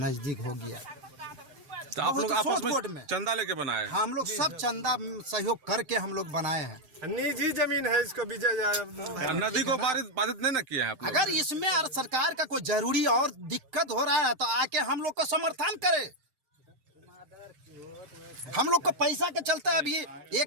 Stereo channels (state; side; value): late; left; 7.7 ms